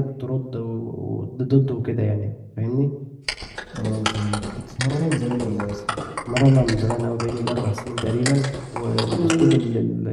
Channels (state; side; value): identical; both; correlation 1.00